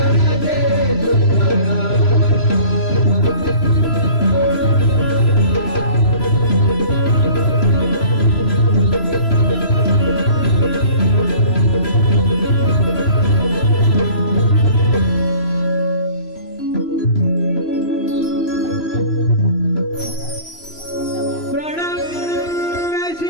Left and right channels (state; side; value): late; right; 3.0 ms